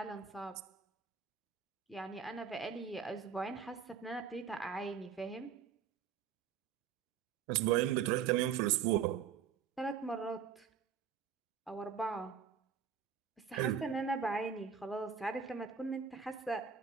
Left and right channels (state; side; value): quieter; left; 7.3 dB